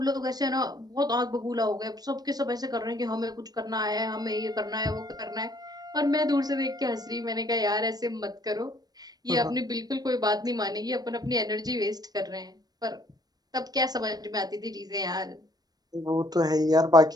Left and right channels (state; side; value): late; left; 0.19 ms